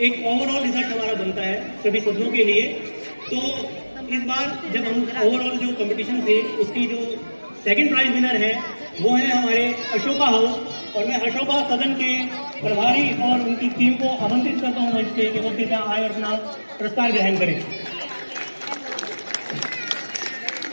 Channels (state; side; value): inverted; both; correlation -1.00